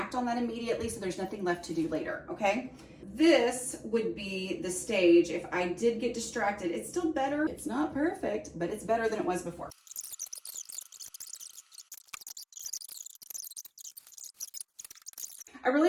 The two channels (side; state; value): both; identical; correlation 1.00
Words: on that immediately, so there's nothing left to do later, okay? This would be the stage if I did get distracted. It's still better. It's not perfect, but it's better than it was before. I really